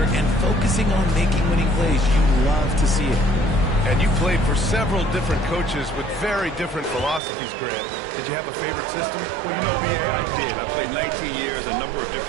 and focusing on making winning plays. You love to see it. And you played for several different coaches with very different philosophies, Grant. Did you have a favorite system? Well, you know, B.A., I did. I played 19 years, a number of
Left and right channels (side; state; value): left; drops out; at 7.2 s